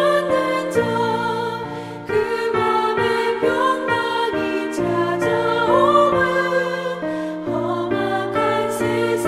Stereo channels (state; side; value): identical; both; correlation 1.00